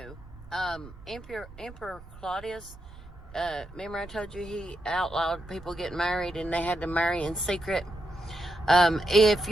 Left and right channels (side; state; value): right; noise; rumble, 18 dB below the sound